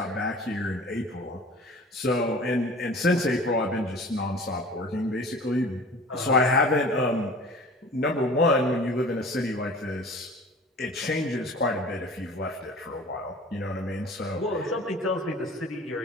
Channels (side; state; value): both; normal; correlation 0.43